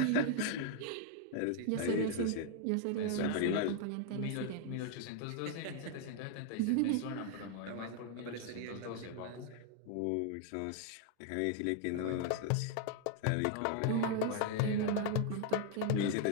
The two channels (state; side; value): different; both; correlation 0.00